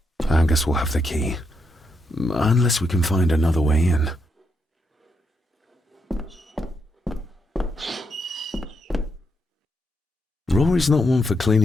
I guess we'll have the key. Unless we can find another way in. Rory's not one for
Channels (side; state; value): both; normal; correlation 0.80